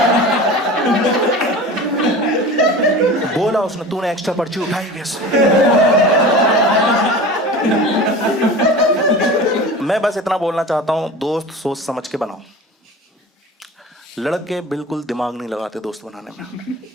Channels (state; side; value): normal; both; correlation 0.35